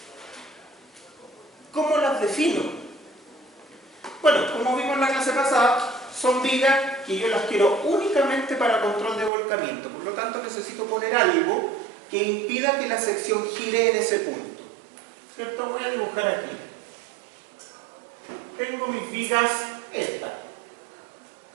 ¿Cómo las defino? Bueno, como vimos en la clase pasada, son vigas que yo las quiero únicamente para control de volcamiento. Por lo tanto, necesito poner algo que impida que la sección gire en ese punto. ¿Cierto? Voy a dibujar aquí. Tengo mis vigas, estas.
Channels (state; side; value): drops out; left; at 9.3 s